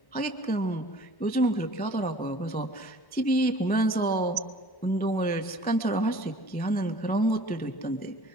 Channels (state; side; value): late; right; 1.1 ms